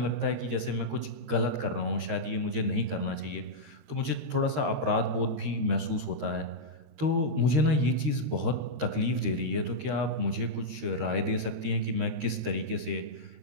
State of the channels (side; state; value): left; late; 13 ms